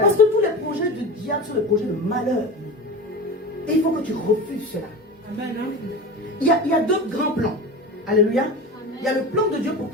que tous les projets du diable sont des projets de malheur. Et il faut que tu refuses cela. Amen. Il y a deux grands plans. Alléluia. Il y a le plan de Dieu pour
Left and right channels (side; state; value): both; normal; correlation 0.29